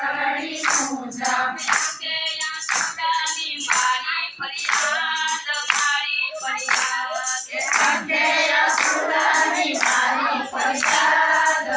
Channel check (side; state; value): both; identical; correlation 1.00